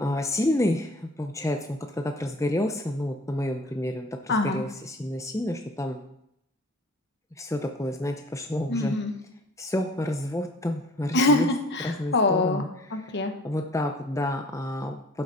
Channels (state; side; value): normal; both; correlation 0.49